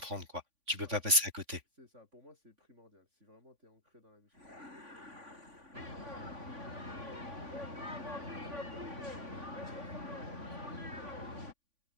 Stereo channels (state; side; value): late; left; 3.5 ms